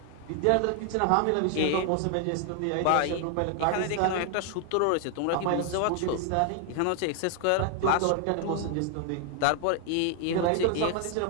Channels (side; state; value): both; different; correlation 0.00